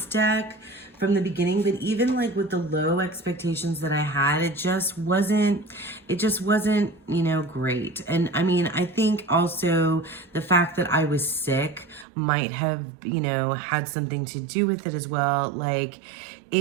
deck from the beginning, but even like with the low expectations that I had, it just wasn't, you know, great. And I mean, I think also the fact that I was sick might have, you know, had something to do with it as well. Like,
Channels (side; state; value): left; drops out; at 12.1 s